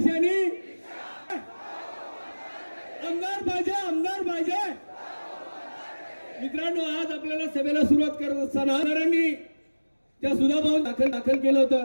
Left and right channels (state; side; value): inverted; both; correlation -1.00